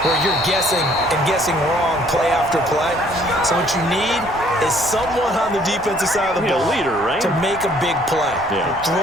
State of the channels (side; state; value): right; noise; rumble, 19 dB below the sound